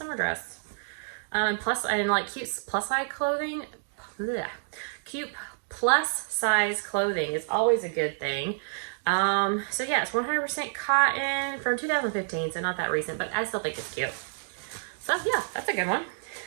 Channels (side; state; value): left; silent; digital silence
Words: dress. And like cute plus size clothing. Blech. Cute plus size clothing is always a good thing. So yeah, it's 100% cotton from 2015, so not that recent, but I still think it's cute. So yeah, that's a good one.